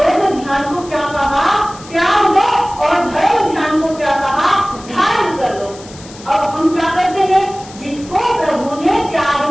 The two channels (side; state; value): left; noise; hiss, 19 dB below the sound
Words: ध्यान को क्या कहा, त्याग दो, और धर्म ध्यान को क्या कहा, धारण कर लो। अब हम क्या करते हैं, जिसको प्रभु ने